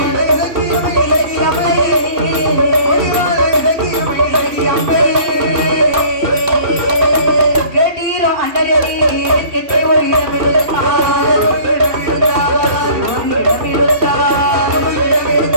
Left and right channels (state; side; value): late; left; 2.8 ms